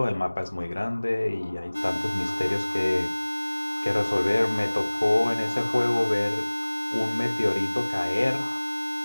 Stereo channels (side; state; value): both; inverted; correlation -1.00